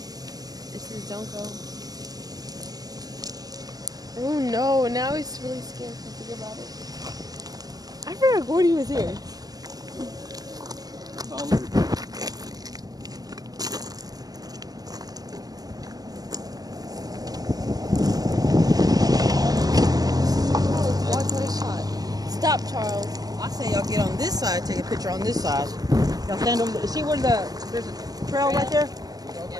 This is don't go. Oh no, now he's really scared to think about it. I forgot Gordy was here. Stop, Charles. I say y'all get on this side, take a picture on this side. Y'all stand over there. See where there's a trail right there?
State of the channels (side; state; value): left; late; 0.18 ms